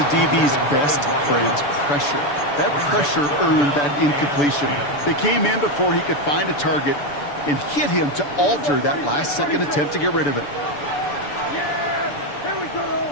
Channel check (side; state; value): right; late; 6.9 ms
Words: DB's best friend, pressure. That pressure earned that incompletion. They came in before he could find a target and hit him to alter that last-second attempt to get rid of it. Yeah! Here we go!